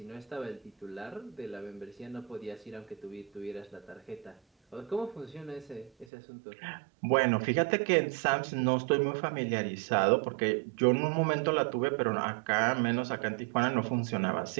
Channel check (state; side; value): drops out; left; at 6.1 s